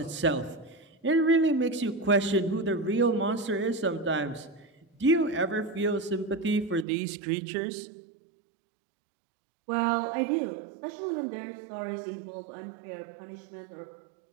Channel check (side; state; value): left; drops out; at 6.9 s